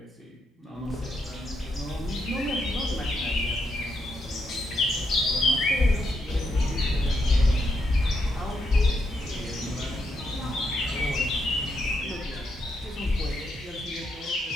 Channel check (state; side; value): normal; both; correlation 0.80